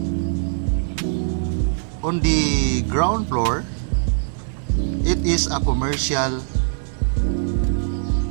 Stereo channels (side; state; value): left; silent; 64 dB below the other